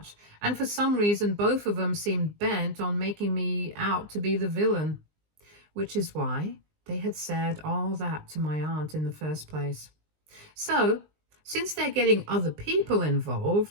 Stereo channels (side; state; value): left; late; 19 ms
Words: And for some reason, both of them seemed bent on making me out to be the villain, which is why they had said all that to my aunt in the first place. So, since they're getting other people